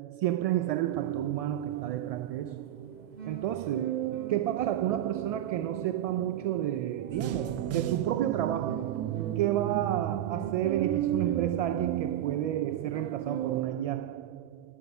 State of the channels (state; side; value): quieter; left; 11.9 dB